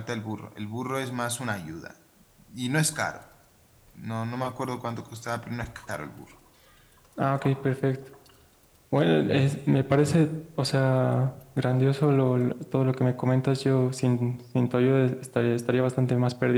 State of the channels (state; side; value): identical; both; correlation 1.00